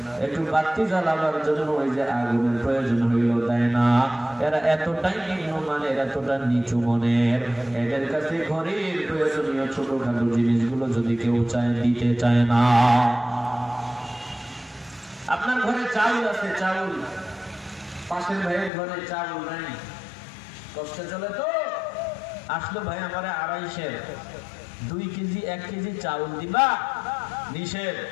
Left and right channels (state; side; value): drops out; right; at 18.7 s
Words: একটু বাতি জ্বালাবার জন্য ওই যে আগুনের প্রয়োজন হইল দেয় না এরা এতটাই নিম্নমানের এতটা নিচু মনের এদের কাছে ঘরের প্রয়োজনীয় ছোটখাটো জিনিসগুলো যদি কেউ চায় দিতে চায় না আপনার ঘরে চাউল আছে চাউল পাশের ভাইয়ের ঘরে চাউল নাই কষ্টে চলে তো আসলো ভাই আমারে 2.5 কেজি 1 কেজি চাউল দিবা নিষেধ